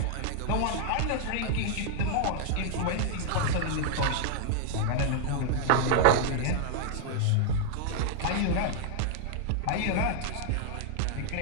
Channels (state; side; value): different; both; correlation 0.00